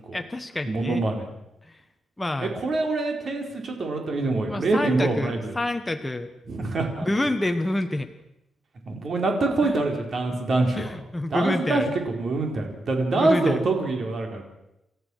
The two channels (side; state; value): both; normal; correlation 0.86